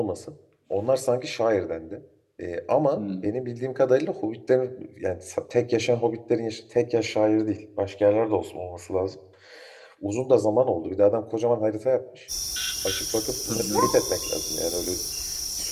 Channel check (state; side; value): identical; both; correlation 1.00